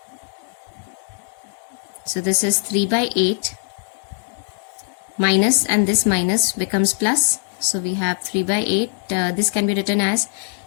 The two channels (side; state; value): right; silent; digital silence